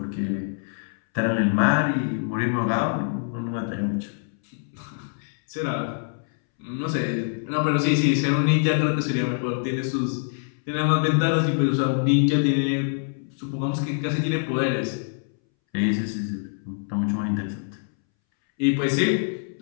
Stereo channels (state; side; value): silent; right; 62 dB below the other